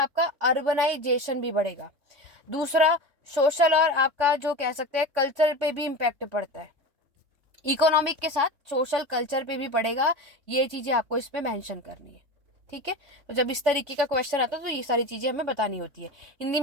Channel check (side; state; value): left; late; 3.5 ms